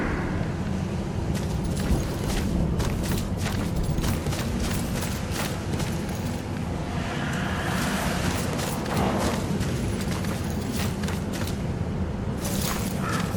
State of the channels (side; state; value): both; identical; correlation 1.00